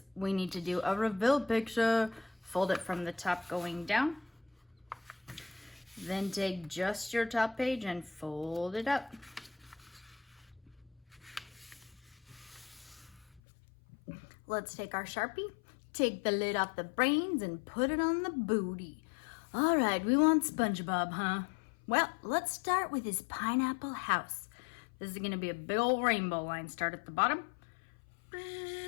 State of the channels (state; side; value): drops out; right; at 13.4 s